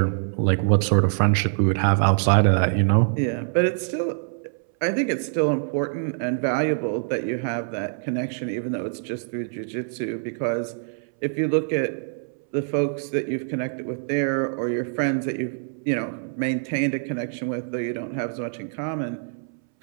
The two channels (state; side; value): silent; left; 62 dB below the other